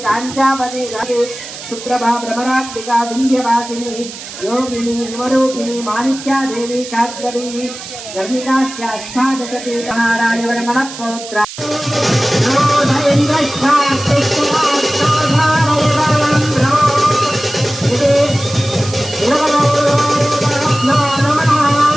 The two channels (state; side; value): noise; right; hiss, 12 dB below the sound